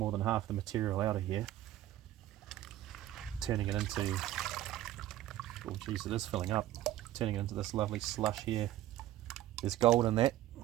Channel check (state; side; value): quieter; left; 14.0 dB